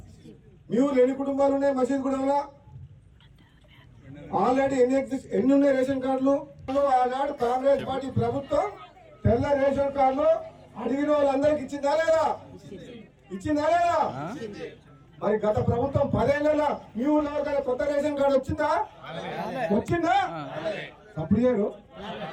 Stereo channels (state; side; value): identical; both; correlation 1.00